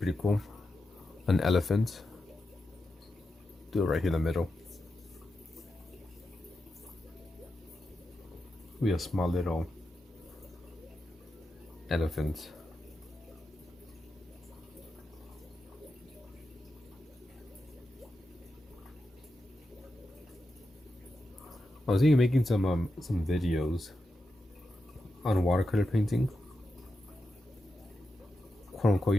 cool. An elephant. Do it right here in the middle. We have a small little elephant. I was thinking of making some videos on watercolor painting, quote unquote,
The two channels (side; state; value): both; normal; correlation 0.89